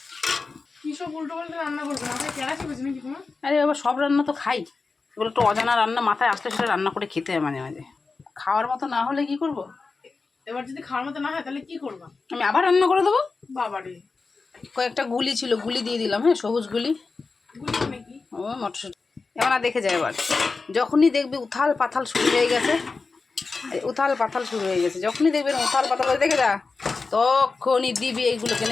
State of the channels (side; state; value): right; quieter; 4.2 dB